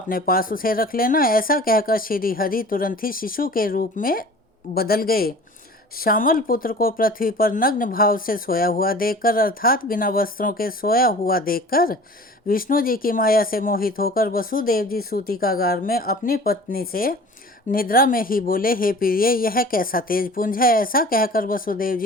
पास उसे रख लेना। ऐसा कहकर श्री हरि तुरंत ही शिशु के रूप में बदल गए। श्यामल पुत्र को पृथ्वी पर नग्न भाव से सोया हुआ देखकर अर्थात बिना वस्त्रों के सोया हुआ देखकर विष्णु जी की माया से मोहित होकर वसुदेव जी सूतिकागार में अपनी पत्नी से निद्रा में ही बोले, हे प्रिय, यह कैसा तेज पुंज है। ऐसा कहकर वसुदेव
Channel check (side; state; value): both; normal; correlation 0.43